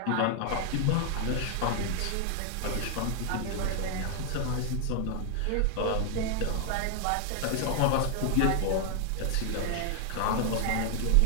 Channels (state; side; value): different; both; correlation 0.00